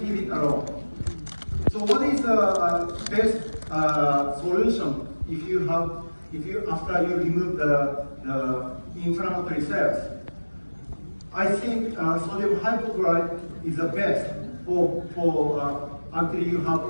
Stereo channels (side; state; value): both; inverted; correlation -1.00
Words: leave it alone. So what is the best solution after you remove the inflammatory cells? I think sodium hypochlorite is the best for until you have